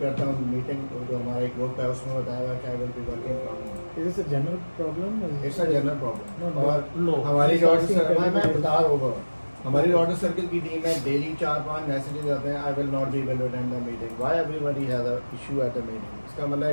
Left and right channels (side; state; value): both; inverted; correlation -1.00